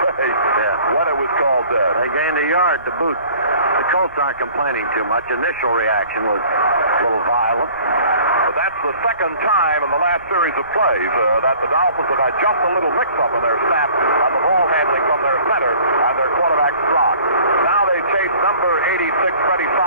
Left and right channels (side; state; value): both; inverted; correlation -0.50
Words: say what it was called dead? They gained a yard to boot. The Colts aren't complaining too much. Initial reaction was a little violent. But that's the second time in the last series of plays that the Dolphins have had just a little mix-up in their snap on the ball handling from their center and their quarterback Strock. Now they chase number 86, Freddie